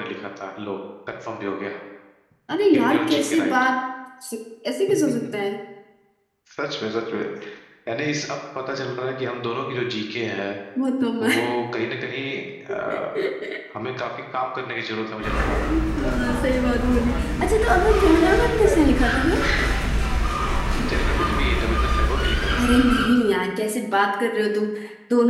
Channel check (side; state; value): both; identical; correlation 1.00